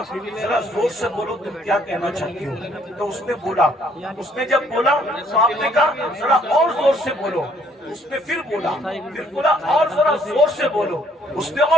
जरा जोर से बोलो तुम क्या कहना चाहती हो। तो उसने बोला, उसने जब बोला तो आपने कहा जरा और जोर से बोलो। उसने फिर बोला और जरा जोर से बोलो। उसने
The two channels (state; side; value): normal; both; correlation 0.64